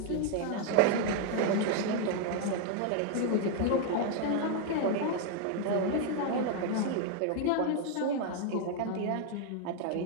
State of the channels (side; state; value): both; different; correlation 0.00